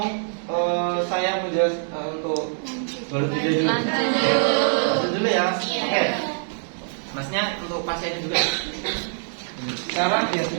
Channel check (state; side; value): silent; left; 63 dB below the other